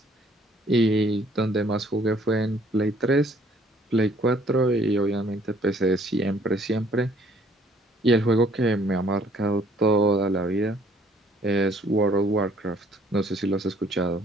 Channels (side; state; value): both; normal; correlation 0.61